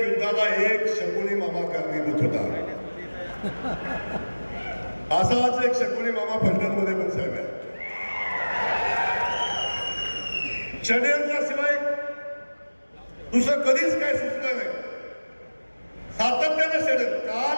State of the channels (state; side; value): inverted; both; correlation -1.00